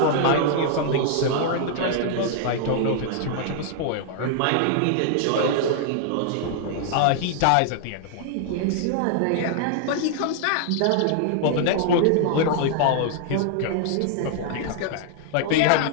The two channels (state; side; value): different; both; correlation -0.01